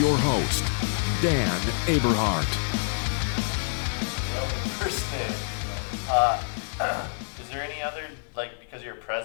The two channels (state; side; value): silent; right; digital silence